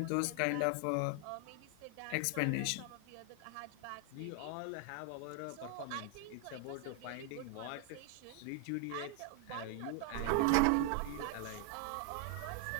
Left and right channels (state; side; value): different; both; correlation 0.00